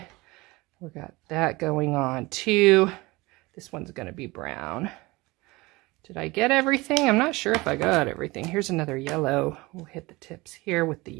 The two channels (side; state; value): left; quieter; 22.2 dB